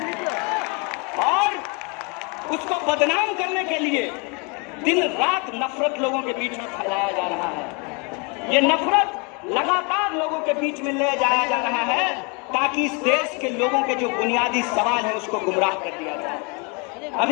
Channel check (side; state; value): right; quieter; 32.4 dB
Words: और उसको बदनाम करने के लिए दिन रात नफरत लोगों के बीच में फैलाया जा रहा है। ये नफरत लगातार लोगों के बीच में ले जाया जा रहा है ताकि इस देश के लोगों के जो बुनियादी सवाल है उसको गुमराह कर दिया जाए।